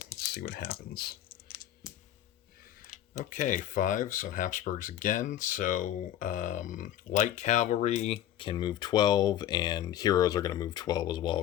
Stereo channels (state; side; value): quieter; right; 11.6 dB